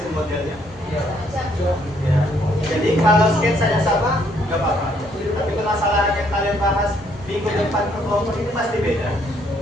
modelnya. Ya. Jadi kalau sketsanya sama, nggak apa-apa. Tapi permasalahan yang kalian bahas minggu depan ke kelompok ini pasti beda.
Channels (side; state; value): both; normal; correlation 0.68